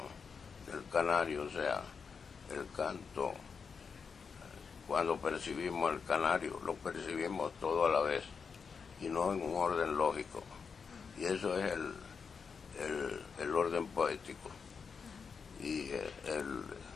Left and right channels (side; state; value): right; quieter; 5.7 dB